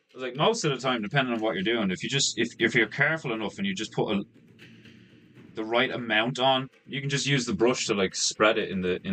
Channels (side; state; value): both; identical; correlation 1.00